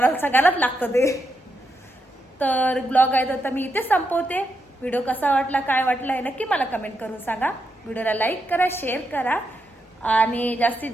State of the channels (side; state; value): both; normal; correlation 0.83